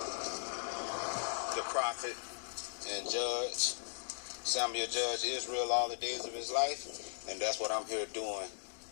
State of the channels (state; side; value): silent; right; digital silence